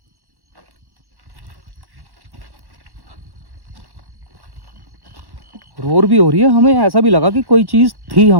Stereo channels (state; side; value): late; left; 1.1 ms